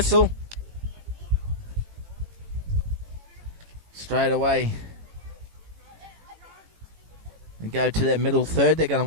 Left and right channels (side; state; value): left; late; 18 ms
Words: Straight away. And go to their middle third. They're going